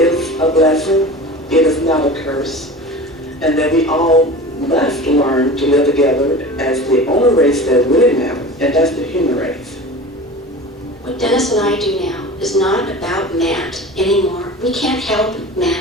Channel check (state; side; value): normal; both; correlation 0.35